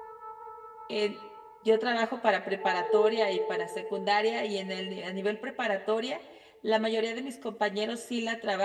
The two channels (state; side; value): identical; both; correlation 1.00